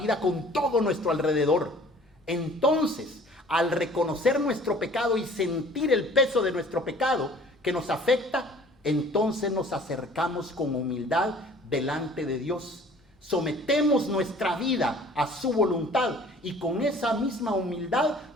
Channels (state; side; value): normal; both; correlation 0.51